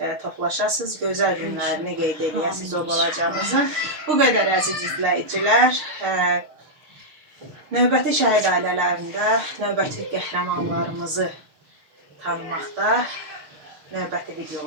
toplaşasınız, gözəl günlərini qeyd edəsiniz o balacamızın. Bu qədər əziz izləyicilər, növbəti şəhid ailələrində növbəti qəhrəmanlarımızı tanımaqda, növbəti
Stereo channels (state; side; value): late; left; 6.5 ms